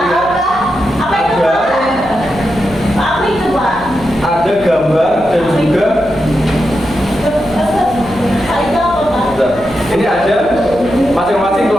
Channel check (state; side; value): noise; right; hum, 18 dB below the sound